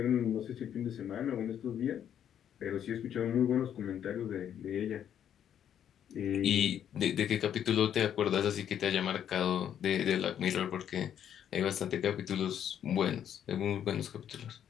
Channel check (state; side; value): quieter; right; 9.6 dB